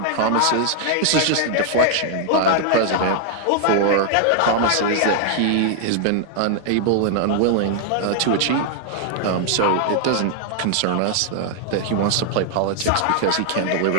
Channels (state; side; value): different; both; correlation 0.00